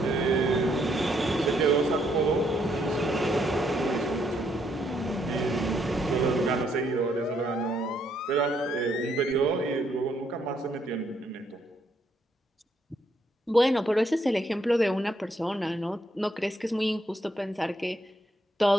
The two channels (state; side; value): normal; both; correlation 0.73